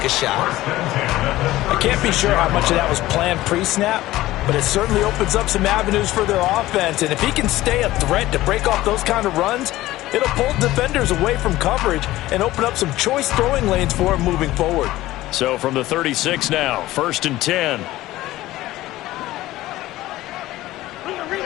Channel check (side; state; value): right; quieter; 16.4 dB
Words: a shot. I can't be sure how much of that was planned pre-snap, but it certainly opens up some avenues for their offense. And if he can stay a threat to break off those kind of runs, it'll pull defenders away from coverage and open up some choice throwing lanes for him moving forward. So from the 36 now, 1st and 10.